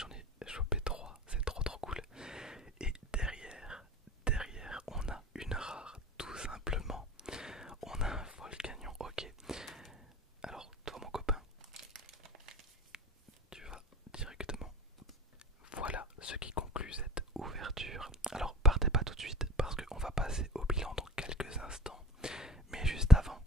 ai chopé 3, c'est trop cool. Et derrière, on a une rare, tout simplement. On a un Volcanion, ok. Alors toi mon copain, tu vas directement. Voilà ce qui conclut cette ouverture. Alors partez pas tout de suite parce qu'on va passer au bilan dans quelques instants. Mais juste avant,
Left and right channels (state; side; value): normal; both; correlation 0.41